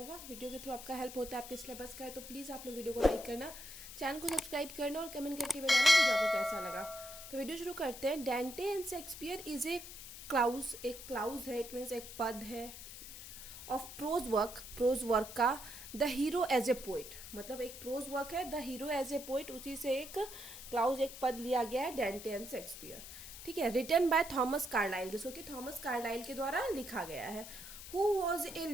वीडियो के थ्रू आपका हेल्प होता है आपके सिलेबस का है, तो प्लीज़ आप लोग वीडियो को लाइक करना, चैनल को सब्सक्राइब करना और कमेंट करके बताना वीडियो आपको कैसा लगा। तो वीडियो शुरू करते हैं। Dante and Shakespeare is a clause, एक क्लाउज है, इट मीन्स एक पद है ऑफ प्रोज वर्क का the hero as a poet, मतलब एक प्रोज वर्क है the hero as a poet, उसी से एक क्लाउज एक पद लिया गया है डेंटे एंड शेक्सपियर। ठीक है, रिटन बाय थॉमस कार्लाइल, जिसको कि थॉमस कार्लाइल के द्वारा लिखा गया है। Who was a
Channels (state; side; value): noise; left; hiss, 12 dB below the sound